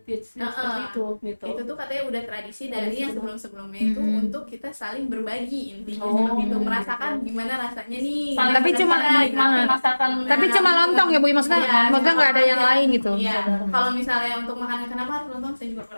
seperti itu gitu? itu tuh katanya udah tradisi dari Tradisi yang itu. sebelum-sebelumnya itu untuk kita saling berbagi intinya Oh. seperti itu, merasakan gimana rasanya nih. Saling Tapi cuma menikmati masakan. Tapi cuma lontong ya Bu, maksudnya Iya, maksudnya cuma nggak ada yang lontong lain aja. gitu. Iya. Kalau misalnya untuk makanan kenapa harus lontong saya juga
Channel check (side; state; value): both; inverted; correlation -1.00